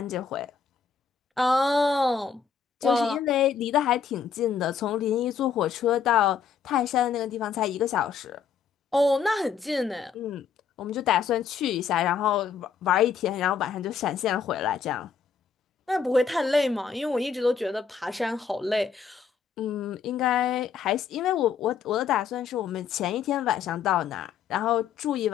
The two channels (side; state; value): right; quieter; 6.4 dB